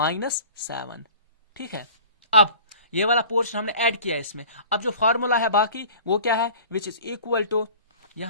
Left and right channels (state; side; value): inverted; both; correlation -0.44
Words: ठीक है। अब ये वाला पोर्शन हमने ऐड किया इसमें। अब जो फॉर्मूला है बाकी वो क्या है? विच इज इक्वल टू,